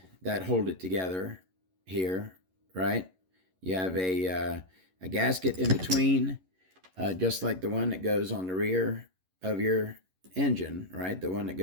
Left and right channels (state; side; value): late; left; 11 ms